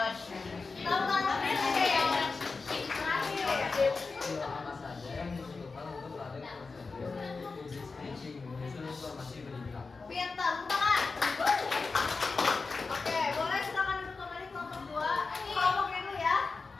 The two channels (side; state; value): right; quieter; 4.2 dB